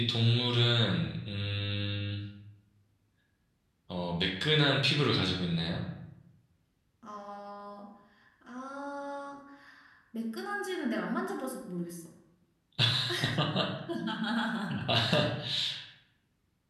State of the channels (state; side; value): identical; both; correlation 1.00